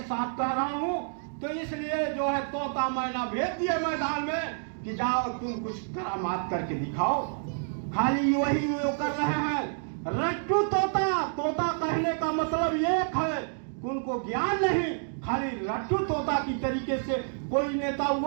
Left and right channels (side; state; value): left; silent; digital silence